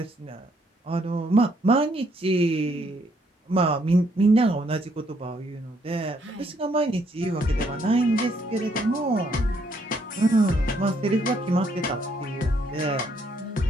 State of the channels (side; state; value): both; normal; correlation 0.70